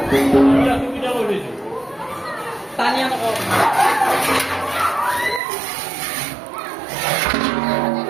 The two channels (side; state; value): left; drops out; at 5.4 s